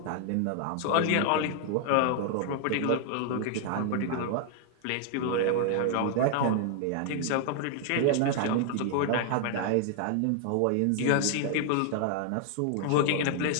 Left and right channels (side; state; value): both; different; correlation 0.00